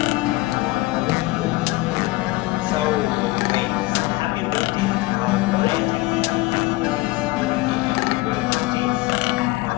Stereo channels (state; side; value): quieter; right; 20.5 dB